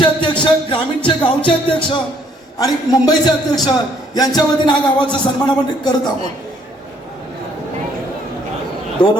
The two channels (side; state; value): both; normal; correlation 0.65